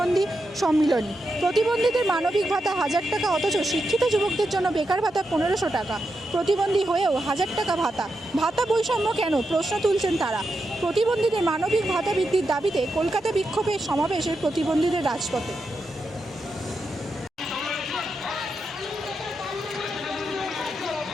সম্মিলনী। প্রতিবন্ধীদের মানবিক ভাতা 1000 টাকা, অথচ শিক্ষিত যুবকদের জন্য বেকার ভাতা 1500 টাকা। প্রতিবন্ধী হয়েও 1000 টাকা ভাতা। ভাতা বৈষম্য কেন, প্রশ্ন তুলছেন তারা। প্রতিবন্ধীদের মানবিক ভাতা বৃদ্ধির দাবিতে কলকাতা বিক্ষোভে সমাবেশের প্রতিবন্ধীদের রাজপথে।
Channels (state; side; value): normal; both; correlation 0.86